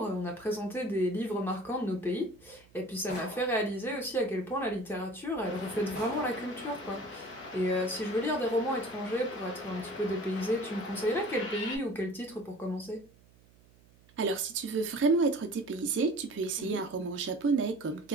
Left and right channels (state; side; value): noise; right; hum, 27 dB below the sound